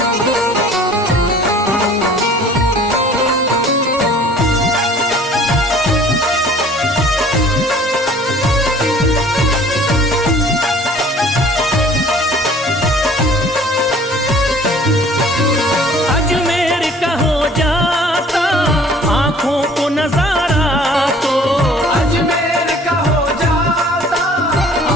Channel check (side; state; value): both; normal; correlation 0.52